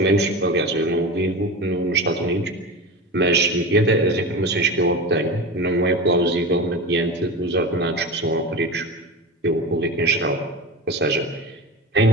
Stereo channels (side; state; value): both; normal; correlation 0.26